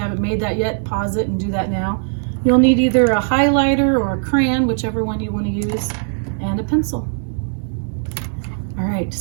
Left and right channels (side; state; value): left; silent; digital silence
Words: made that yet, pause it and do that now. You'll need either a highlighter or a crayon, whichever one you want to use, and a pencil. All right,